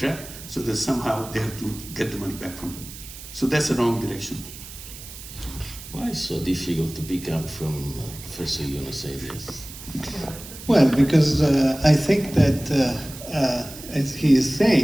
so that somehow they have to get the money back from them. So that's the wrong direction. Why is it so difficult to pick up from Professor Yunus' ideas? Well, because I think that, as he is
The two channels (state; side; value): noise; right; hiss, 14 dB below the sound